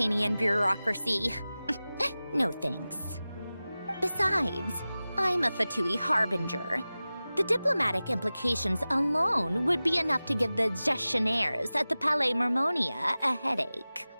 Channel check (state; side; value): inverted; both; correlation -0.97